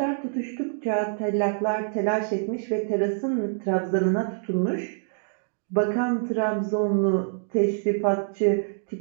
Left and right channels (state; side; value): silent; left; digital silence